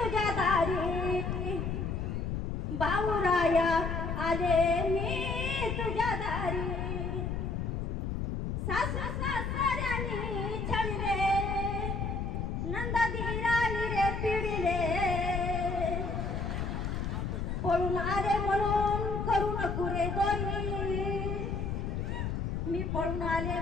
दारी, भाऊराया आले मी तुझ्या दारी. सासू सासऱ्यानी छळले, नंदाधीरानी रे पिडिले, पळून आले म्हणून करू नको रे दोरी, मी पळून आले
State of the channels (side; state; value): left; noise; rumble, 2 dB below the sound